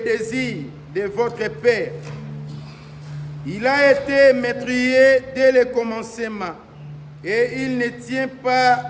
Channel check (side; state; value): both; identical; correlation 1.00